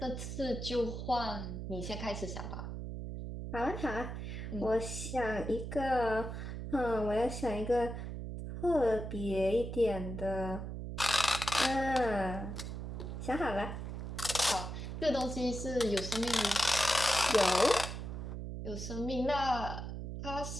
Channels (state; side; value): noise; right; hum, 6 dB below the sound